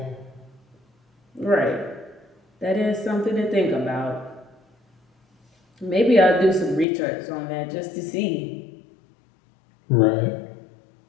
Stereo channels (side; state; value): right; drops out; at 6.9 s